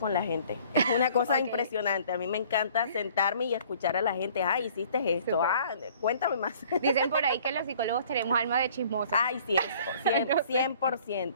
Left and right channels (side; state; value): both; inverted; correlation -0.54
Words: la gente. Es una cosa impresionante. A mí me encanta sentarme y escuchar a la gente. Ay, hiciste esto. Súper. Ah, cuéntame más. Dicen por ahí que los psicólogos tenemos alma de chismosa. Ay, sí, eso.